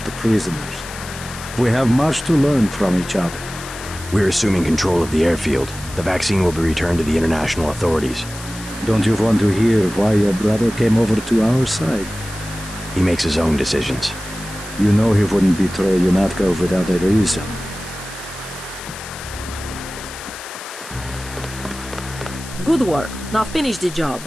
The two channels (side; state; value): left; noise; hiss, 14 dB below the sound